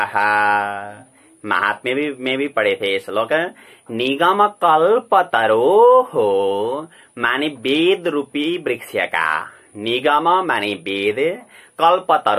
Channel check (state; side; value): identical; both; correlation 1.00